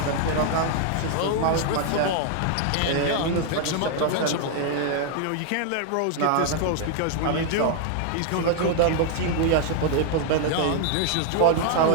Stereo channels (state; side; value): different; both; correlation 0.00